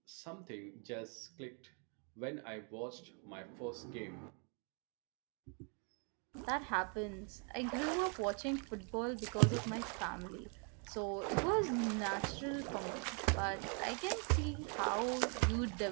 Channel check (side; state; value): left; quieter; 39.0 dB